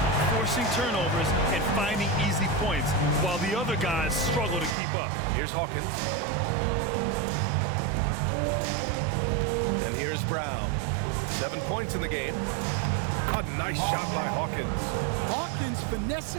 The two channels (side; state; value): left; drops out; at 4.8 s